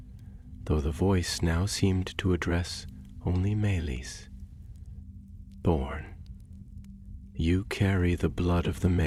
though the voice now seemed to address only Melis. Thorn, you carry the blood of the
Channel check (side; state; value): both; identical; correlation 1.00